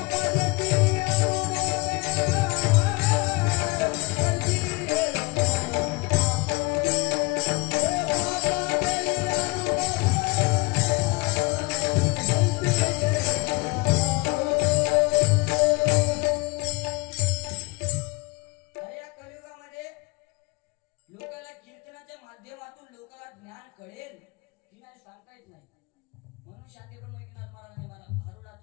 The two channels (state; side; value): quieter; right; 25.9 dB